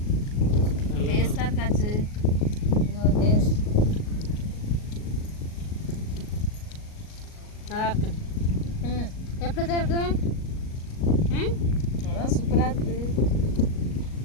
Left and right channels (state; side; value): late; right; 38 ms